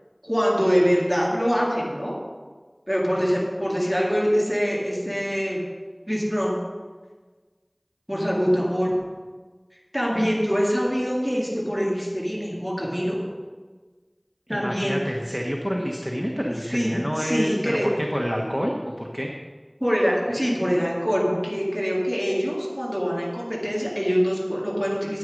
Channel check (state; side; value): identical; both; correlation 1.00